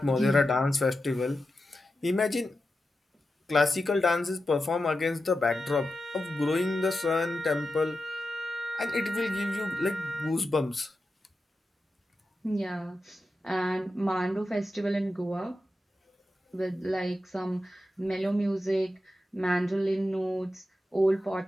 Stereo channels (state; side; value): normal; both; correlation 0.90